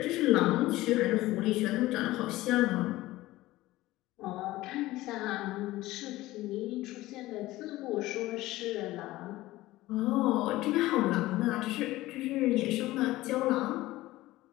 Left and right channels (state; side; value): quieter; right; 17.5 dB